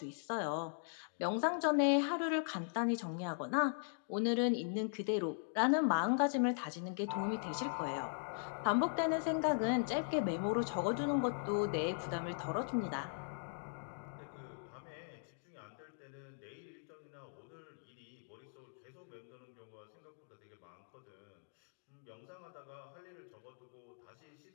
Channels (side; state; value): right; silent; digital silence